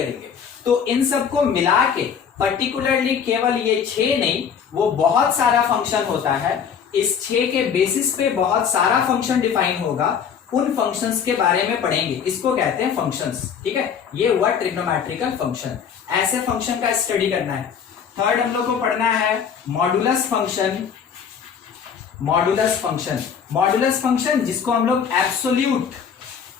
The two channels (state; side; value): quieter; right; 7.3 dB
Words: तो इन सबको मिला के पर्टिकुलरली केवल ये 6 नहीं, वो बहुत सारा फंक्शन होता है। इस 6 के बेसिस पे बहुत सारा फंक्शन डिफाइन होगा। उन फंक्शंस के बारे में पढ़ेंगे, इसको कहते हैं फंक्शंस। ठीक है, ये हुआ ट्रिग्नोमेट्रिकल फंक्शन। ऐसे फंक्शन का स्टडी करना है। थर्ड हम लोग को पढ़ना है modulus function. Modulus function, modulus function जिसको हम लोग एब्सोल्यूट